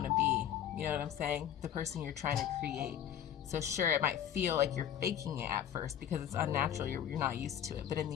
to be. You know what I'm saying? The person you're trying to create. So sure, it might feel like you're faking it at first because it's unnatural. You're not used to it. But in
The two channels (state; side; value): quieter; right; 10.0 dB